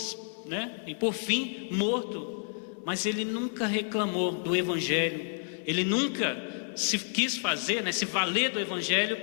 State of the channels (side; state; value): right; silent; 57 dB below the other